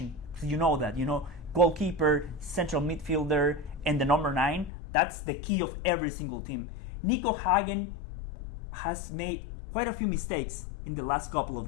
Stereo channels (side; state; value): right; drops out; at 4.7 s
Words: So you know that, goalkeeper, central midfielder, and the number 9. That's the key of every single team. Nico Hagen has made quite a few mistakes in the last couple